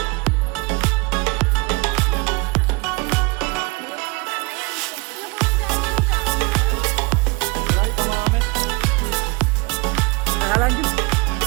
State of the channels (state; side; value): quieter; left; 26.9 dB